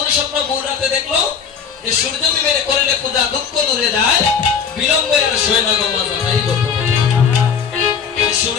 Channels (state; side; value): quieter; right; 6.7 dB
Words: স্বপ্ন ভোর রাতে দেখলো? যে সূর্য বিবের করলে পূজা দুঃখ দূরে যায়, বিলম্বে আর শোয় না গো মাজা। এই গল্প,